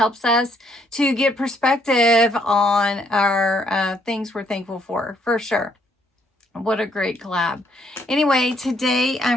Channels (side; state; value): both; normal; correlation 0.69